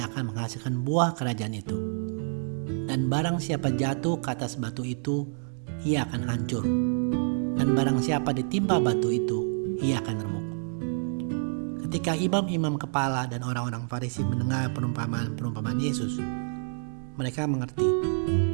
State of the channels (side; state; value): left; silent; digital silence